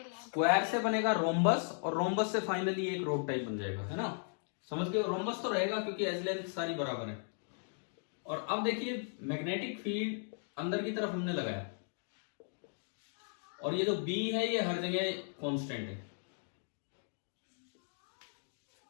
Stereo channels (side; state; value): right; silent; 53 dB below the other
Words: स्क्वायर से बनेगा रोम्बस और रोम्बस से फाइनली एक रोड टाइप बन जाएगा, है ना? समझ गए? रोम्बस तो रहेगा क्योंकि एज लेंथ सारी बराबर है। और अब देखिए मैग्नेटिक फील्ड अंदर की तरफ हमने लगाया और ये जो B है ये हर जगह कांस्टेंट है।